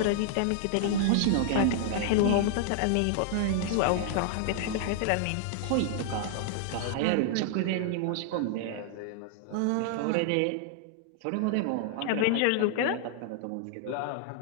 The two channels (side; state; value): both; different; correlation -0.01